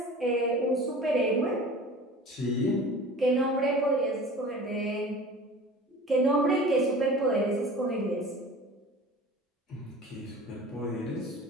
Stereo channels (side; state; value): both; normal; correlation 0.41